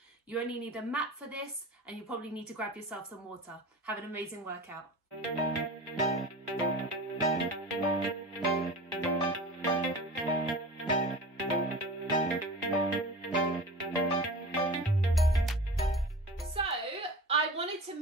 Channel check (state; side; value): normal; both; correlation 0.35